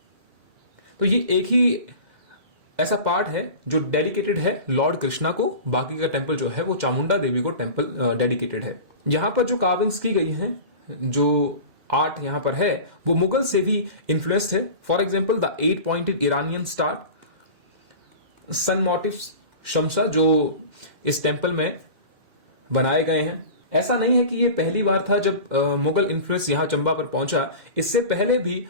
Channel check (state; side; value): late; left; 2.1 ms